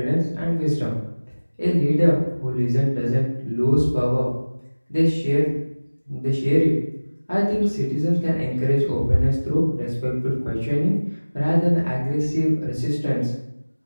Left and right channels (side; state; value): both; inverted; correlation -1.00